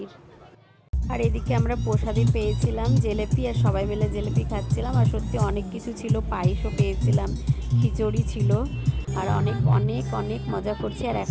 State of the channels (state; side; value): identical; both; correlation 1.00